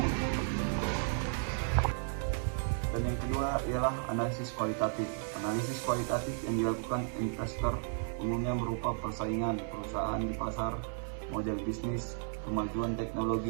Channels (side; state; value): left; silent; 55 dB below the other